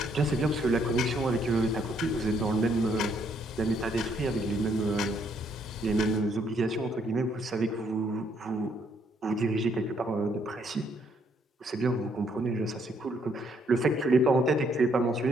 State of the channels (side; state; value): both; normal; correlation 0.70